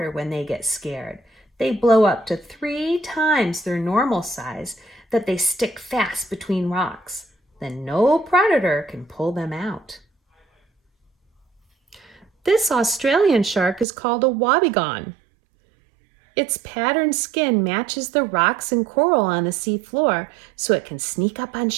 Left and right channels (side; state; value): left; drops out; at 13.9 s